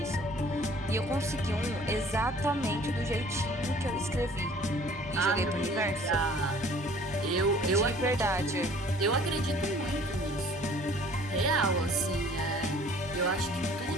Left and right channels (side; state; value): both; normal; correlation 0.52